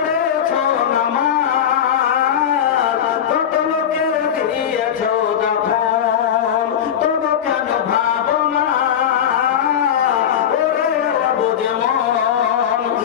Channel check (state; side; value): quieter; right; 9.2 dB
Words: নামাজ, কত লোকের দিয়েছ তখন, তবু কেন ভাবো না ওরে বুঝে মন,